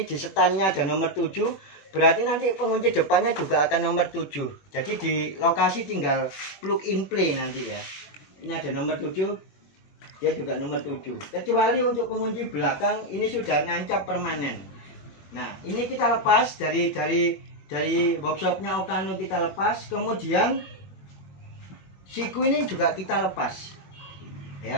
di setannya ada nomor 7, berarti nanti pengunci depannya juga akan nomor 7. Jadi di lokasi tinggal plug in play nanti ya. Ini ada nomor 7, dia juga nomor 7. Kecuali untuk pengunci belakang ini sudah nancap permanen. Nah, ini kita lepas dari workshopnya Okano, kita lepas. Kemudian siku ini juga kita lepas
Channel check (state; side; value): late; right; 21 ms